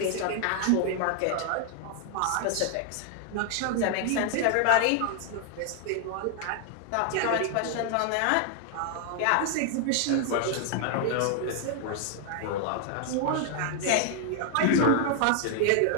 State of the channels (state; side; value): different; both; correlation 0.00